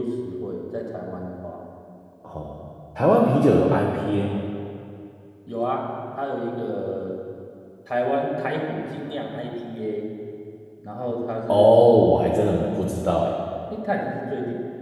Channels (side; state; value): both; identical; correlation 1.00